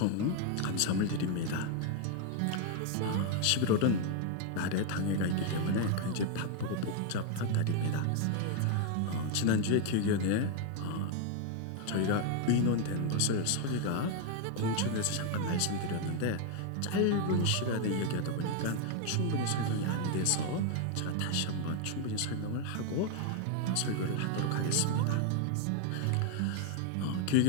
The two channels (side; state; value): both; different; correlation 0.00